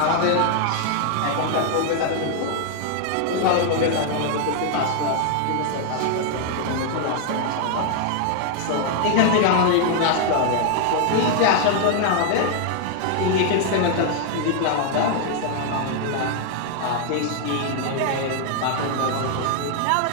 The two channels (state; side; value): different; both; correlation 0.00